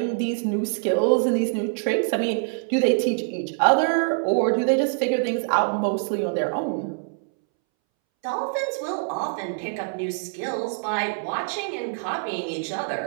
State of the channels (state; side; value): silent; left; 62 dB below the other